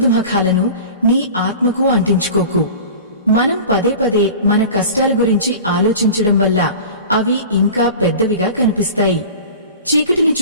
నీ ఆత్మకు అంటించుకోకు. మనం పదే పదే మన కష్టాల గురించి ఆలోచించడం వల్ల అవి ఇంకా పెద్దవిగా కనిపిస్తాయి. చీకటిని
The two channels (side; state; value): both; inverted; correlation -0.37